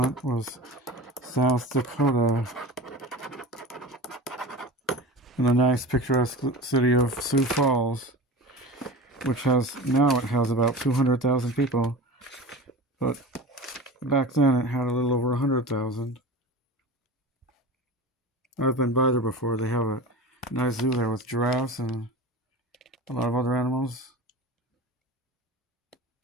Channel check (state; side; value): normal; both; correlation 0.33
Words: was South Dakota, in the nice picturesque city of Sioux Falls, which has about 200,000 people, but back then it had a little over 100,000. I've been by there before. They have a nice zoo there with giraffes and a lot of other animals.